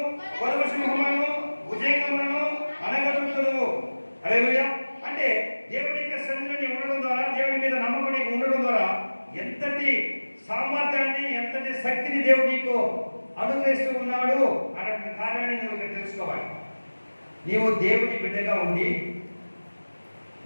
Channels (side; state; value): both; inverted; correlation -1.00